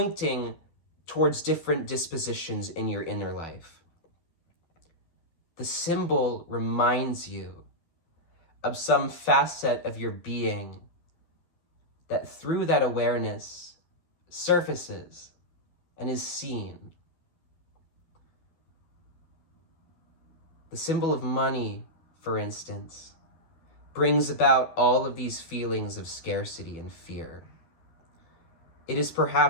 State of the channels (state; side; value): late; right; 12 ms